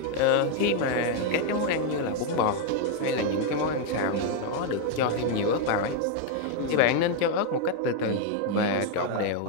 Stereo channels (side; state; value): both; different; correlation 0.01